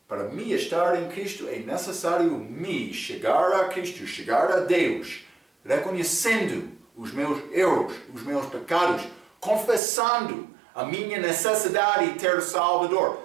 Para me estar em Cristo é necessário me chegar a Cristo, chegar a Deus, reconhecendo os meus erros, os meus pecados, confessando a minha necessidade de ter Salvador.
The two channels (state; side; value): drops out; left; at 9.8 s